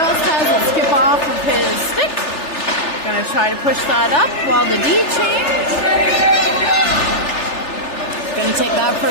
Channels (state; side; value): late; right; 3.4 ms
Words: has it skip off of his stick. Going to try to push that up while the D change. Going to take that for